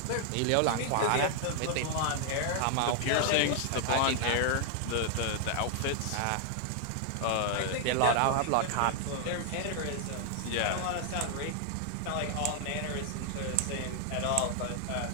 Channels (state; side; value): different; both; correlation 0.00